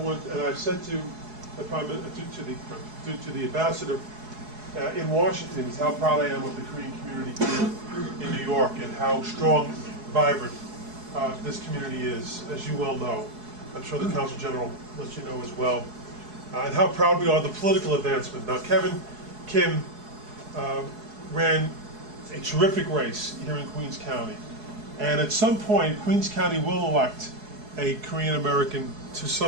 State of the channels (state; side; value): late; left; 4.7 ms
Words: and I've said to the to the ambassador in Washington, is how proud I am of the Korean community here in New York and how strong, vibrant this community is, as you well know. I'm sure the Consul General lets you know as well. And how proud we are of the political advancement. Now, Kevin Kim ran a terrific race here in Queens County. And at some point, Queens County will elect a Korean American to